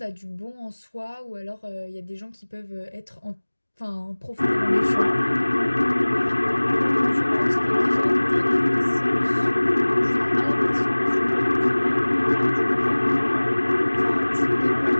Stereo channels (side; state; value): both; inverted; correlation -1.00